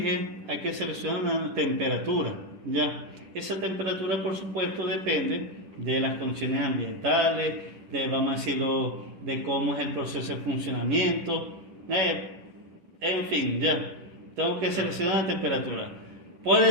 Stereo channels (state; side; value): late; left; 10 ms